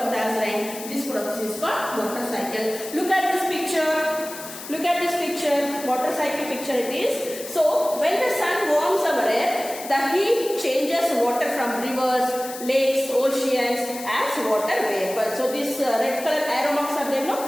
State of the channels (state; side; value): noise; left; hiss, 12 dB below the sound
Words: as rain. This process is called water cycle. Look at this picture. Look at this picture, water cycle picture it is. So, when the sun warms our earth, the heat changes water from rivers, lakes, oceans as water vapor. So, this red color arrow marks are there,